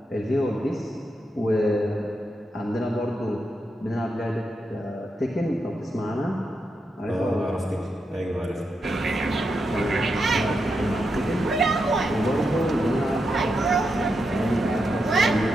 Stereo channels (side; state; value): both; normal; correlation 0.85